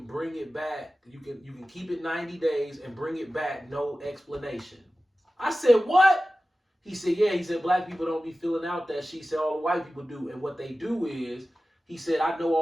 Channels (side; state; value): both; normal; correlation 0.95